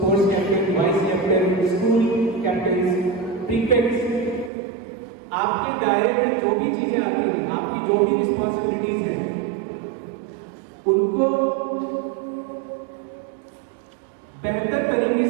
captain, vice captain, school captain, prefects, आपके दायरे में जो भी चीजें आती हैं, आपकी जो भी रिस्पॉन्सिबिलिटीज हैं, उनको बेहतर तरीके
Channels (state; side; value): drops out; left; at 4.5 s